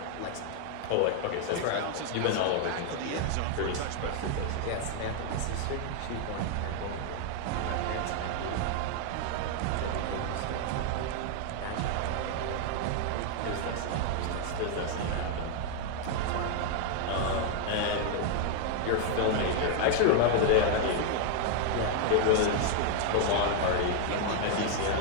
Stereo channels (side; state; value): both; different; correlation 0.00